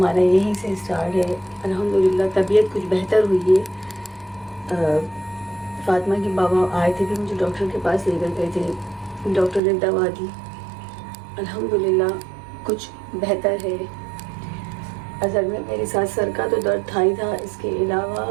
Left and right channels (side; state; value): left; drops out; at 9.6 s